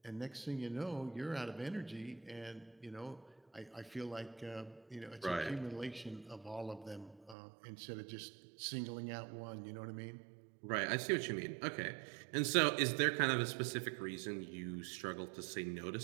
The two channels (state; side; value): drops out; left; at 7.4 s